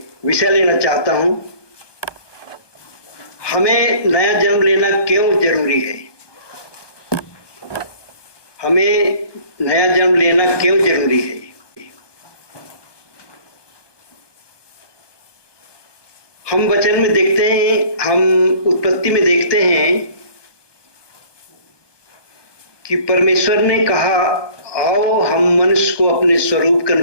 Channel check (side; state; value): right; late; 1.2 ms